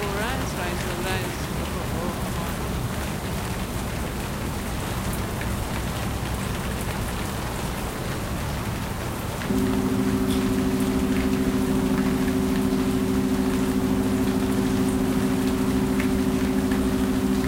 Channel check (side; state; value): both; identical; correlation 1.00